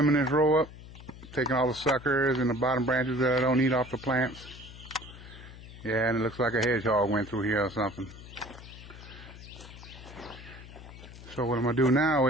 this row up, taking all the suckers and the bottom branches that I don't need off the plants. Yeah, and it looks like a hedgehog went through here or something. So what I'm going to do now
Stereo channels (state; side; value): noise; left; hum, 16 dB below the sound